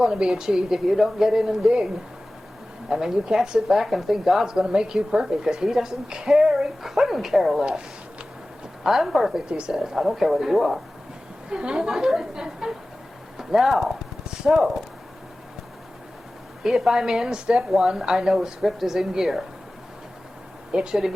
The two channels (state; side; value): normal; both; correlation 0.97